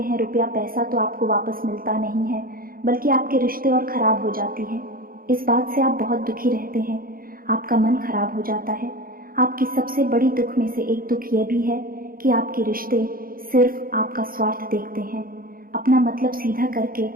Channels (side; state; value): left; late; 0.42 ms